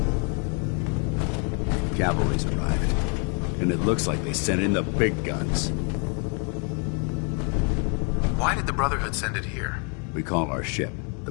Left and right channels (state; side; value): quieter; right; 37.6 dB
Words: Cavalry's arrived, and it looks like they sent in the big guns. Why did the Brotherhood send it here? We call our ship the